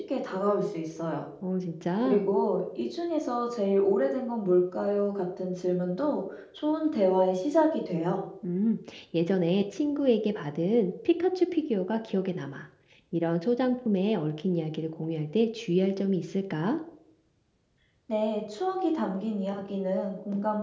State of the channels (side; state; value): both; identical; correlation 1.00